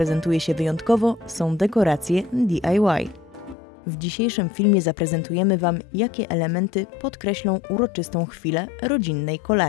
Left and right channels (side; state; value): right; drops out; at 3.6 s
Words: się wyjątkowo, są dekoracje DIY. W dzisiejszym filmie zaprezentujemy Wam, jakie elementy podkreślą uroczystą chwilę rodzinnej